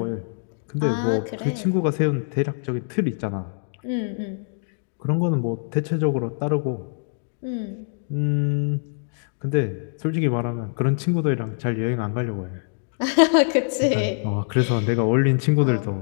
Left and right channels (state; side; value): silent; right; digital silence